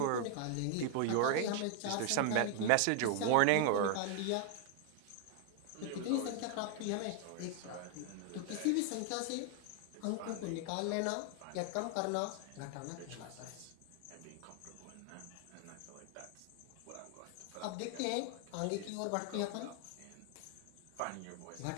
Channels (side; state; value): both; different; correlation 0.00